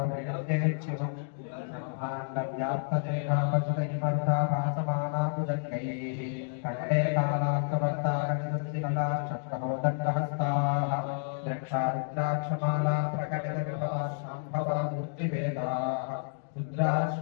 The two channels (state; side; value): silent; right; digital silence